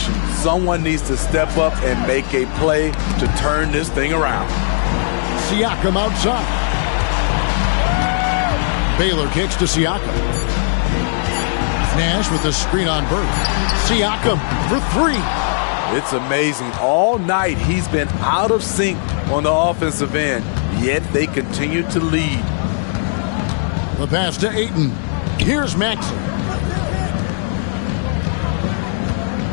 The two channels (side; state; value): right; silent; 67 dB below the other